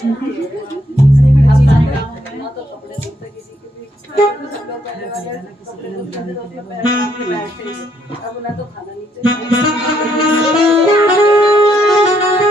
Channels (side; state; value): both; normal; correlation 0.73